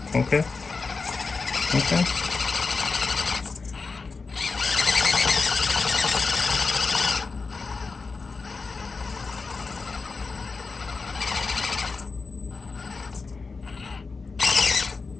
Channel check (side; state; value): right; quieter; 4.4 dB